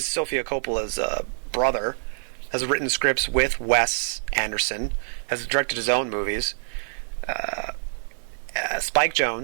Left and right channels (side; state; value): left; silent; digital silence